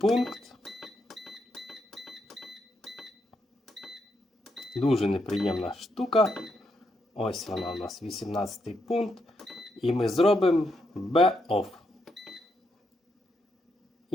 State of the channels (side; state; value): both; normal; correlation 0.80